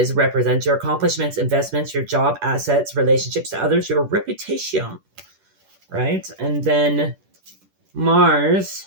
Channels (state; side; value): late; left; 10 ms